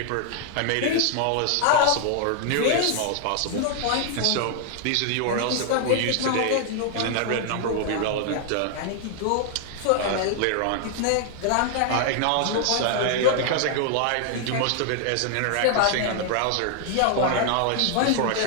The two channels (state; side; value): different; both; correlation 0.00